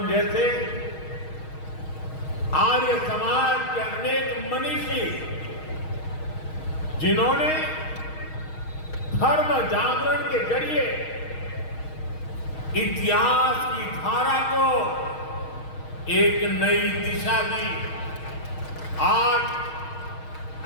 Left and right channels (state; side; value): late; right; 6.4 ms